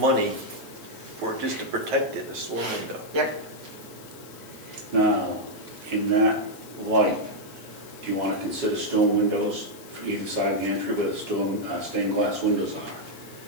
for just to protect it, a storm window. Yep. Now, in that light, do you want to consider stone windows for either side of the entry where the stained glass windows are?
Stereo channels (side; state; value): left; noise; hiss, 19 dB below the sound